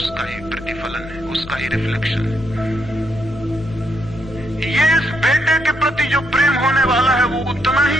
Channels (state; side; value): noise; left; hum, 17 dB below the sound